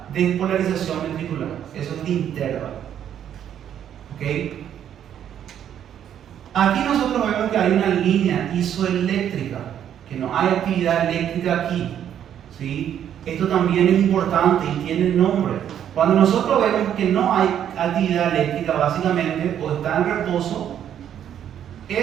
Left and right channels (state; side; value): quieter; left; 9.8 dB